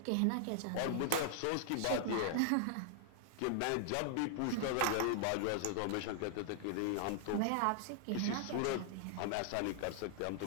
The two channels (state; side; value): different; both; correlation -0.01